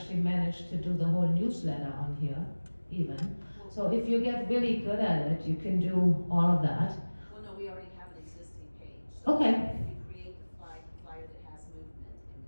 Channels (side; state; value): both; inverted; correlation -1.00